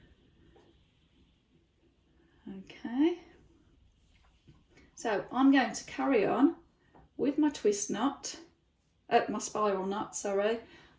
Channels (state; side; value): identical; both; correlation 1.00